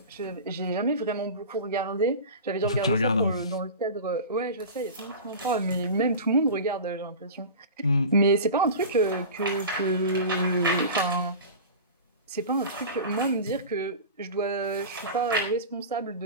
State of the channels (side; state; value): both; inverted; correlation -0.32